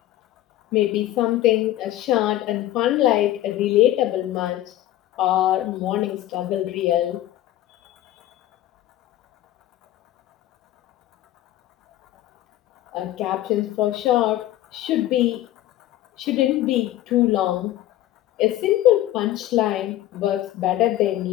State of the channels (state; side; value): quieter; right; 13.9 dB